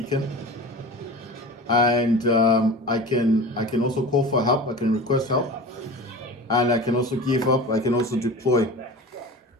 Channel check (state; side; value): normal; both; correlation 0.34